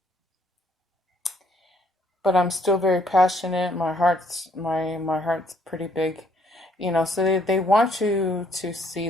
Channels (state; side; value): normal; both; correlation 0.67